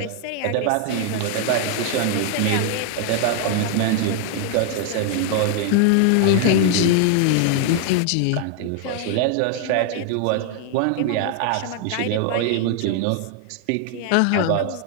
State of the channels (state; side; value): different; both; correlation 0.00